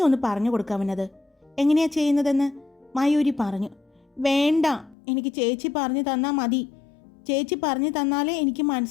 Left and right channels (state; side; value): drops out; right; at 5.0 s